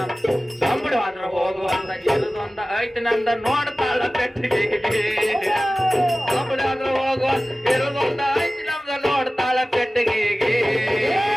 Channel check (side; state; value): both; normal; correlation 0.96